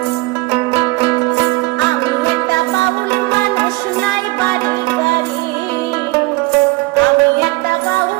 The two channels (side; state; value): left; quieter; 22.5 dB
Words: আমি একটা বাউল মানুষ, নাই বাড়ি গাড়ি। আমি একটা